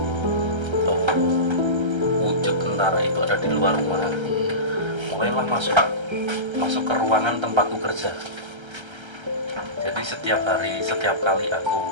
wujud tentara itu ada di luar rumah, mulailah masuk ke ruangan tempatku kerja. Jadi setiap kali aku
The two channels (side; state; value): left; late; 1.3 ms